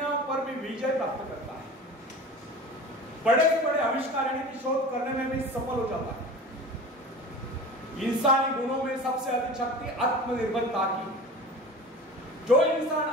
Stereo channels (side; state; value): both; normal; correlation 0.36